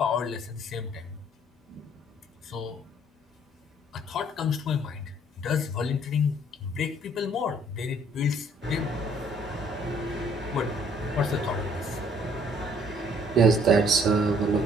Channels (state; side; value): normal; both; correlation 0.61